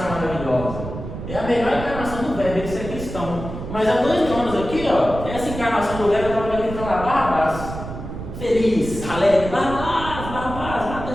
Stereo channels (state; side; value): noise; right; rumble, 9 dB below the sound